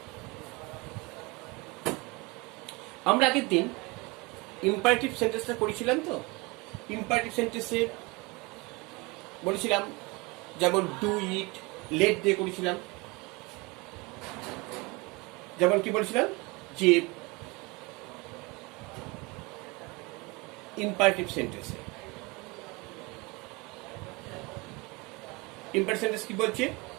আমরা আগের দিন ইম্পারেটিভ সেন্টেন্সটা করেছিলাম, তো ইম্পারেটিভ সেন্টেন্সে বলেছিলাম যেমন ডু ইট, লেট দিয়ে করেছিলাম। যেমন কি বলেছিলাম যে ইম্পারেটিভ সেন্টেন্সে ইম্পারেটিভ সেন্টেন্স কি বলছে,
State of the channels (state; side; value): quieter; left; 25.2 dB